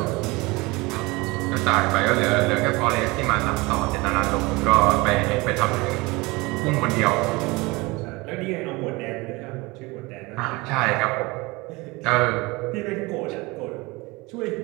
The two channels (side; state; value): left; quieter; 23.9 dB